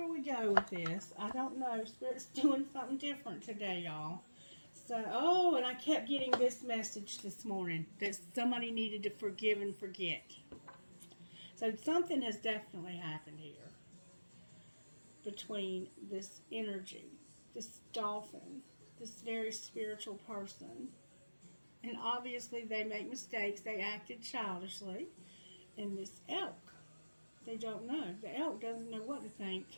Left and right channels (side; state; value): both; inverted; correlation -1.00